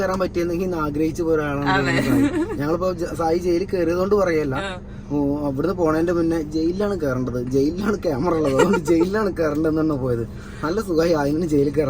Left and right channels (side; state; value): both; identical; correlation 1.00